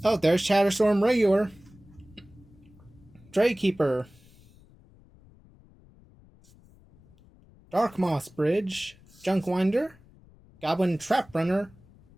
Oh, there's Shatterstorm Regular. Draykeeper. Darkmoss Bridge. Junkwinder. Goblin Trap Runner.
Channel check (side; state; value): left; noise; rumble, 27 dB below the sound